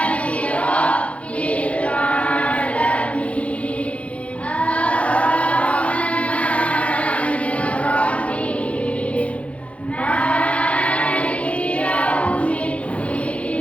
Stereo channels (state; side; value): late; right; 0.063 ms